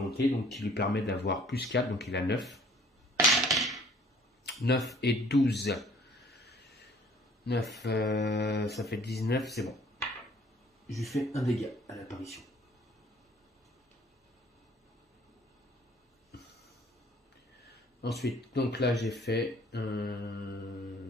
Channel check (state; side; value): normal; both; correlation 0.56